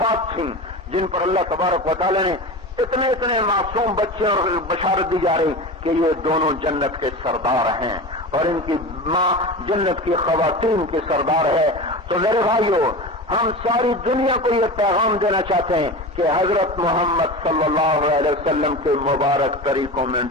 تھیں جن پر اللہ تبارک و تعالی نے اتنے معصوم بچے اور بشارت دی جا رہی کہ یہ دونوں جنت کے سردار ہیں اور ان کی ماں جنت کی خواتین کی سردار ہے۔ تو میرے بھائیو، ہم ساری دنیا کو یہ پیغام دینا چاہتے ہیں کہ حضرت محمد صلی اللہ علیہ وسلم کے مبارک طریقوں میں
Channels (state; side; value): normal; both; correlation 0.29